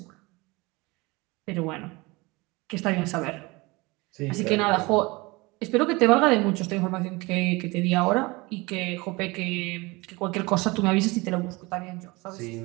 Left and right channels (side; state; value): left; quieter; 24.0 dB